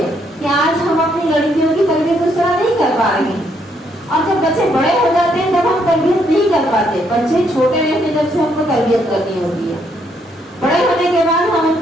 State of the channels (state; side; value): normal; both; correlation 0.72